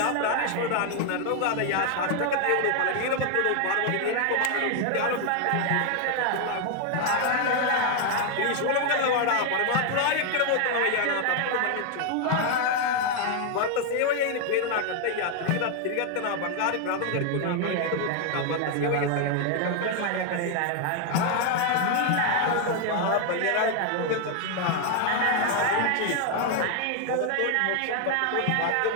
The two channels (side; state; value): both; different; correlation 0.01